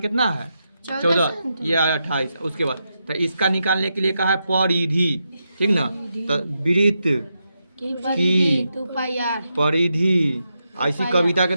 है 14, ये 28। उसके बाद तो इसका निकालने के लिए कहा है परिधि, ठीक ना। तो वृत्त की परिधि ऐसी कविता के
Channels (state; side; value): inverted; both; correlation -0.85